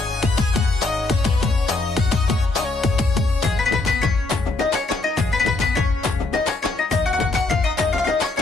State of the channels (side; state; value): right; quieter; 3.2 dB